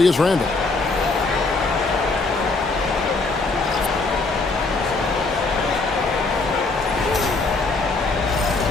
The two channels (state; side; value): quieter; right; 3.6 dB